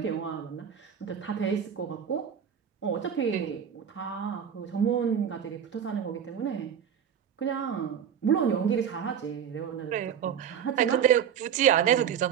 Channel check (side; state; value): left; quieter; 8.4 dB